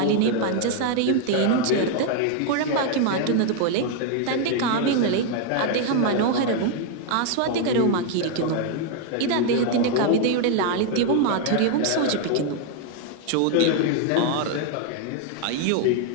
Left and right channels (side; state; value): both; different; correlation 0.00